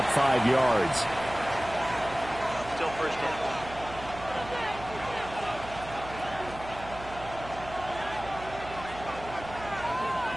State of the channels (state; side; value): noise; right; hum, 14 dB below the sound